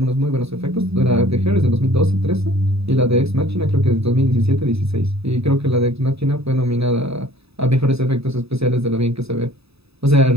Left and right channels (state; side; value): late; left; 0.78 ms